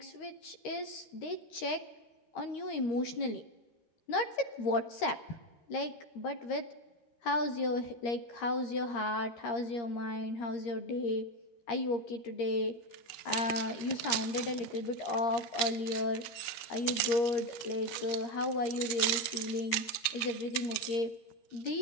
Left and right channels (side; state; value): right; late; 13 ms